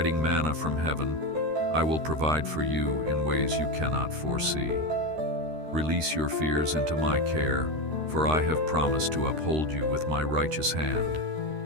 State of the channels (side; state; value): left; late; 13 ms